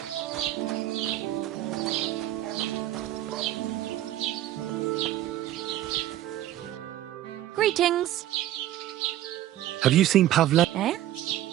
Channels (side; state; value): left; quieter; 13.5 dB